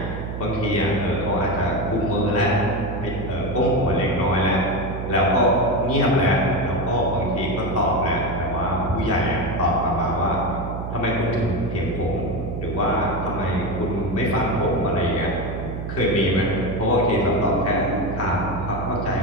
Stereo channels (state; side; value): noise; right; hum, 6 dB below the sound